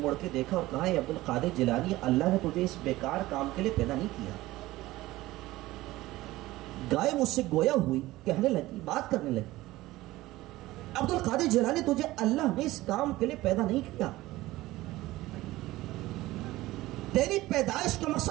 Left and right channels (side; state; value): left; quieter; 17.7 dB